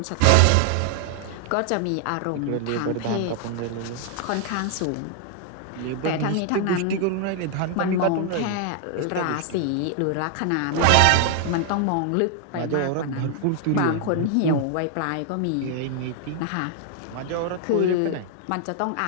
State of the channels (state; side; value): different; both; correlation 0.00